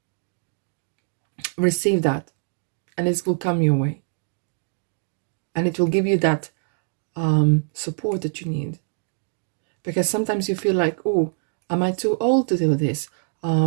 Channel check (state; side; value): silent; left; 63 dB below the other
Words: that, and it will come your way, and it will give you that support that you need. Because sometimes you feel like, oh, am I too old to do this?